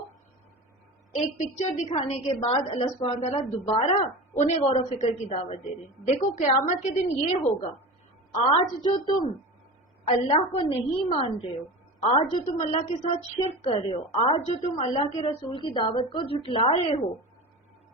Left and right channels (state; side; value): normal; both; correlation 0.30